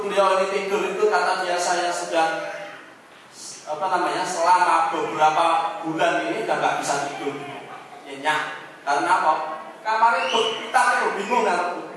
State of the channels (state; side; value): identical; both; correlation 1.00